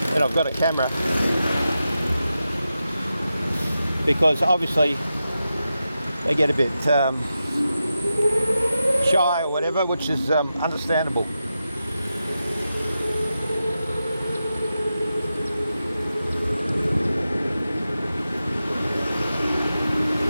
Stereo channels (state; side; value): inverted; both; correlation -0.90